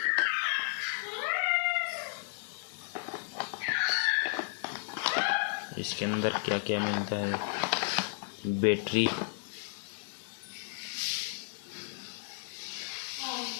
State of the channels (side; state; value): right; silent; digital silence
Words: इसके अंदर क्या क्या मिलता है। बैटरी,